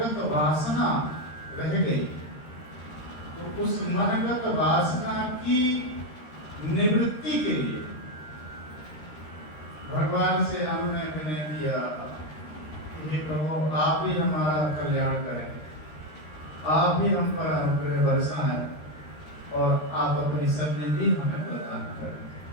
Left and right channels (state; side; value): late; right; 13 ms